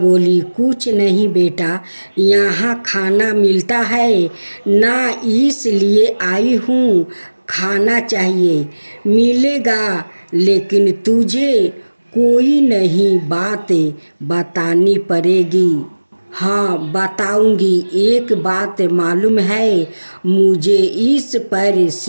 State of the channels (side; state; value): both; inverted; correlation -1.00